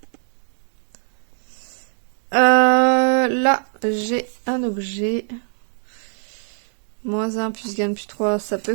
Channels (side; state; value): left; silent; digital silence